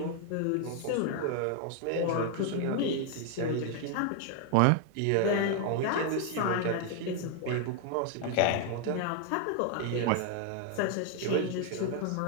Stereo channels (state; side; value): different; both; correlation 0.00